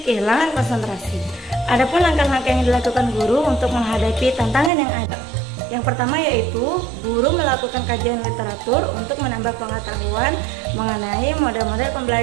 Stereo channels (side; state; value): left; drops out; at 4.7 s